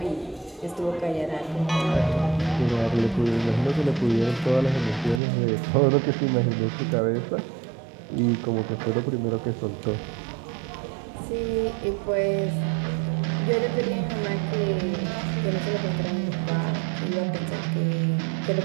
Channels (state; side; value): drops out; left; at 5.2 s